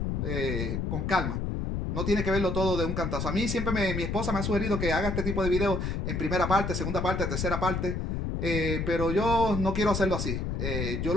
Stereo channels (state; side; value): noise; left; rumble, 1 dB below the sound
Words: con calma. No tiene que verlo todo de un cantazo. A mí siempre mi esposa me ha sugerido que haga este tipo de videos en primera parte, segunda parte, tercera parte. Pero yo no quiero hacerlo así. Yo